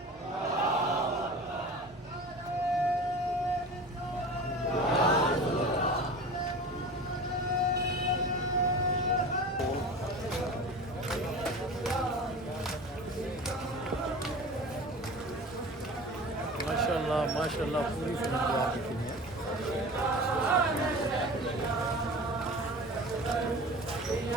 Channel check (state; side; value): normal; both; correlation 0.36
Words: माशाल्लाह माशाल्लाह, पूरी फिल्म जो आपकी फिल्म है।